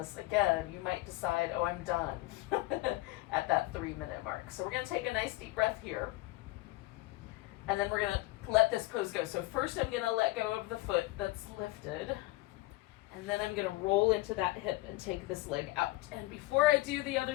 again, you might decide, oh, I'm done at that 3 minute mark. So we're going to take a nice deep breath here, and then we're going to let this pose go. So first I'm going to let go of the foot that's lifted, and then I'm going to roll into that hip and take this leg out. And before I do the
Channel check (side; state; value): right; quieter; 19.3 dB